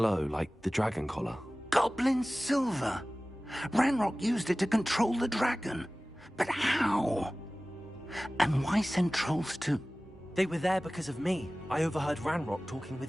like the dragon collar. Goblin silver! Ranrock used it to control the dragon. But how? And why send trolls to... They were there because of me. I overheard Ranrock talking with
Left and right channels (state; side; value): normal; both; correlation 0.97